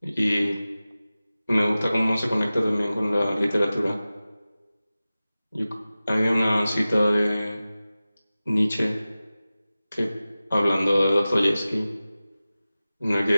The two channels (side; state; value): both; inverted; correlation -0.96